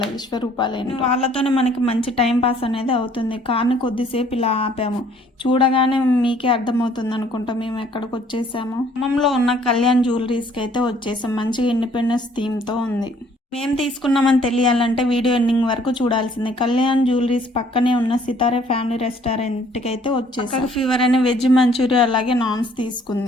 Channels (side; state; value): both; normal; correlation 0.60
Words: విశ్వరూపాలేని. వాళ్ళతోనే మనకి మంచి టైం పాస్ అనేది అవుతుంది. కార్ని కొద్దిసేపు ఇలా ఆపాము. చూడగానే మీకే అర్థమవుతుంది అనుకుంటా మేము ఎక్కడికి వచ్చేసాము. ఖమ్మంలో ఉన్న కళ్యాణ్ జ్యువెలరీస్కి అయితే వచ్చేసాం. మంచిగా ఇండిపెండెన్స్ థీమ్తో ఉంది. మేము తీసుకున్నామని తెలియాలంటే వీడియో ఎండింగ్ వరకు చూడాల్సిందే. కళ్యాణ్ జ్యువెలరీస్ పక్కనే ఉన్న సితారే ఫ్యామిలీ రెస్టారెంట్కి అయితే వచ్చేసాం. ఫీవర్ అనే వెజ్ మంచూరియా అలాగే నాన్స్